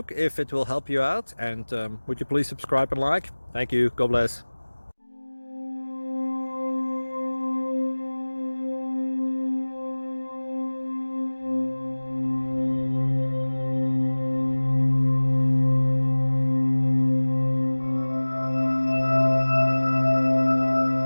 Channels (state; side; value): inverted; both; correlation -1.00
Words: if it will help you out, and would you please subscribe and like? Thank you. God bless.